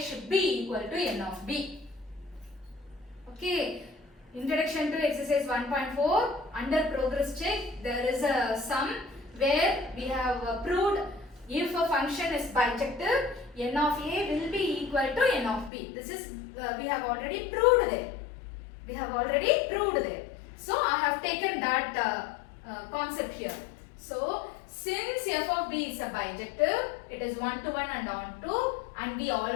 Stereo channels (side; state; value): right; drops out; at 15.7 s